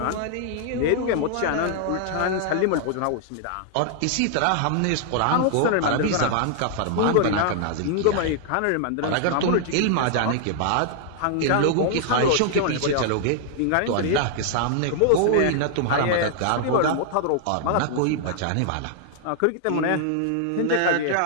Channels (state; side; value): different; both; correlation -0.01